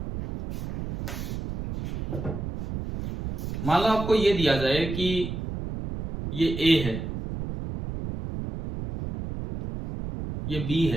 मान लो आपको ये दिया जाए कि ये A है, ये B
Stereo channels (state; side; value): noise; right; rumble, 6 dB below the sound